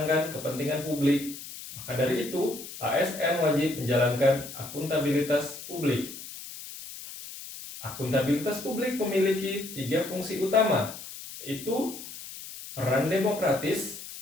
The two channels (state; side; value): noise; left; hiss, 12 dB below the sound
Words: kepentingan publik. Maka dari itu, ASN wajib menjalankan akuntabilitas publik. Akuntabilitas publik memiliki 3 fungsi utama, yaitu peran demokratis,